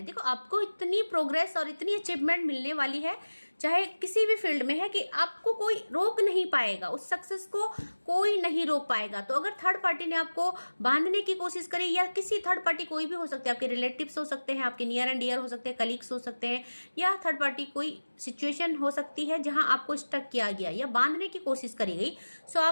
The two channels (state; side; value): inverted; both; correlation -1.00